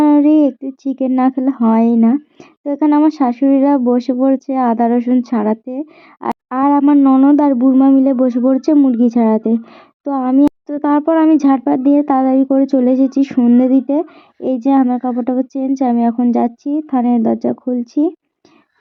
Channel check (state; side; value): identical; both; correlation 1.00